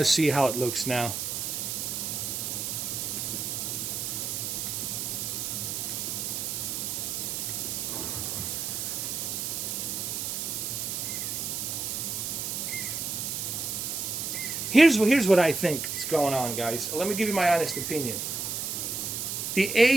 see how it looks now. Here's what I think is going on, guys. Let me give you my honest opinion. The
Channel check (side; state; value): right; noise; hiss, 3 dB below the sound